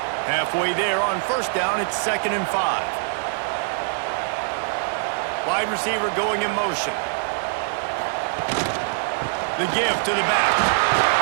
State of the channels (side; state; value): left; silent; 63 dB below the other